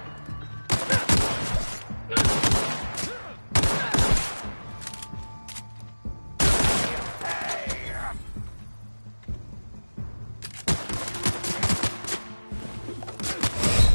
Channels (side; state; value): both; inverted; correlation -1.00